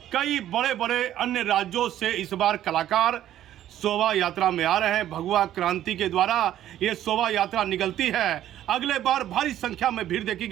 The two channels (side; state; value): left; quieter; 12.1 dB